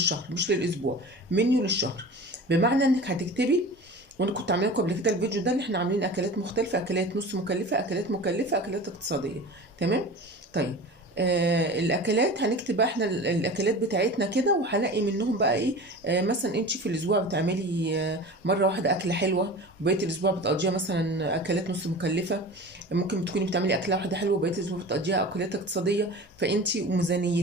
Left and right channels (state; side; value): normal; both; correlation 0.35